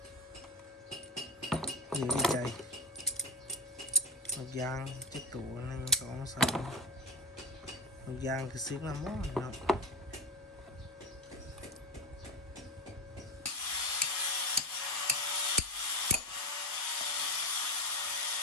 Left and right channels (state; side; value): normal; both; correlation 0.19